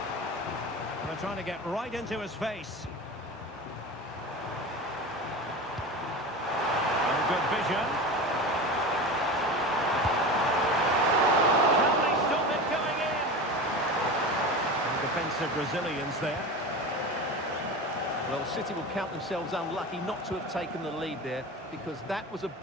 They're trying to get right into his face. Oh, good vision. Can they stop it going in? Defensive resilience there. Well, City will count themselves unlucky not to have taken the lead there, because that was a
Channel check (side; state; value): both; normal; correlation 0.29